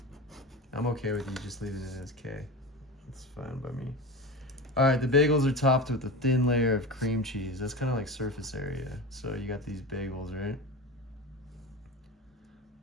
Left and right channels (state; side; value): normal; both; correlation 0.27